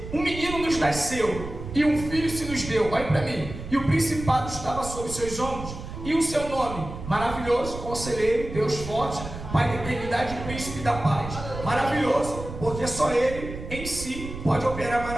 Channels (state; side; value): noise; right; rumble, 10 dB below the sound